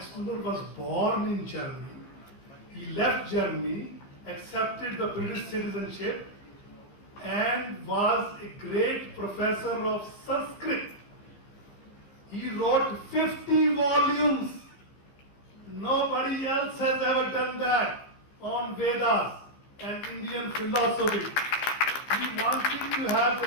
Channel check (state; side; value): late; right; 15 ms